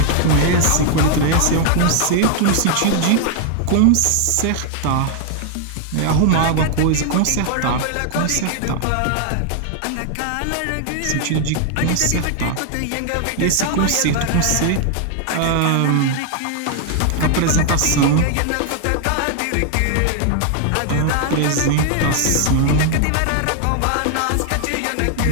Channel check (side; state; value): both; different; correlation 0.00